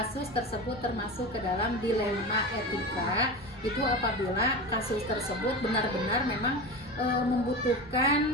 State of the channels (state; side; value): normal; both; correlation 0.27